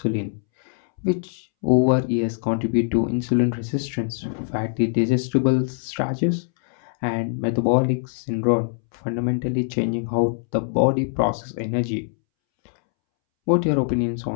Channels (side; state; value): right; silent; 63 dB below the other